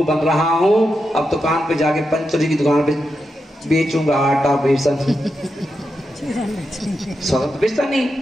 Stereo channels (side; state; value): both; normal; correlation 0.87